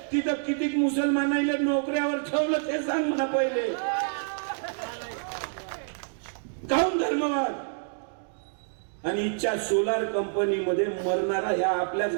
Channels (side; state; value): left; silent; digital silence